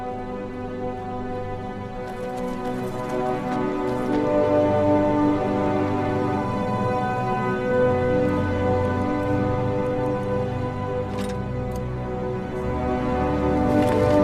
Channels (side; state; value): both; identical; correlation 1.00